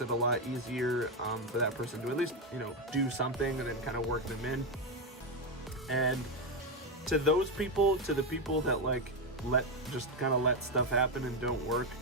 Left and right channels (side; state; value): both; normal; correlation 0.07